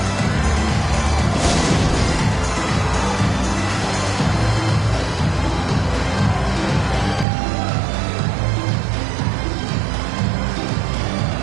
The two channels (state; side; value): drops out; left; at 7.2 s